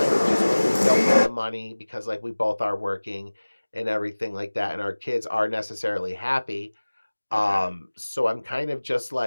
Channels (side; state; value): both; inverted; correlation -1.00